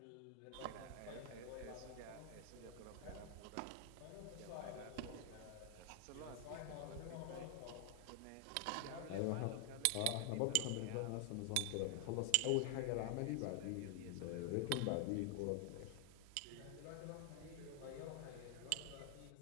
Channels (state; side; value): different; both; correlation 0.00